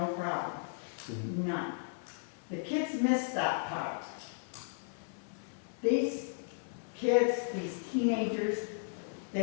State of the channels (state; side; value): silent; right; 54 dB below the other